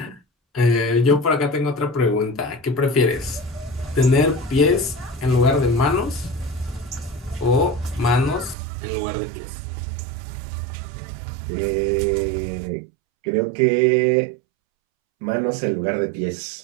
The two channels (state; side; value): drops out; left; at 8.6 s